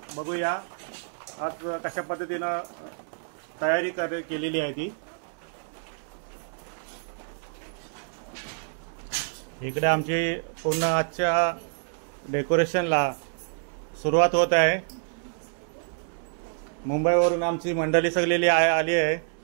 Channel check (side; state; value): left; silent; digital silence